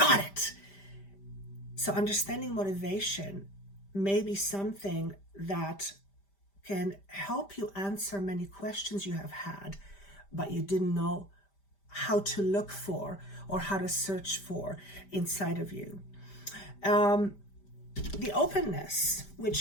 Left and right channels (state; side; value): late; right; 5.1 ms